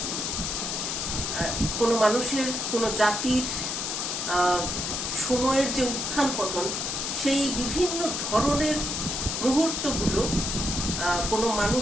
কোনো মানুষের, কোনো জাতির সময়ের যে উত্থান পতন, সেই বিভিন্ন ধরনের মুহূর্তগুলো, কোনো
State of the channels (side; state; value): left; noise; hiss, 2 dB below the sound